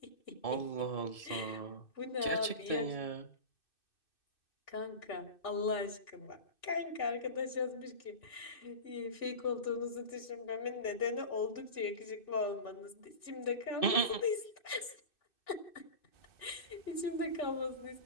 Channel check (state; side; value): late; right; 2.6 ms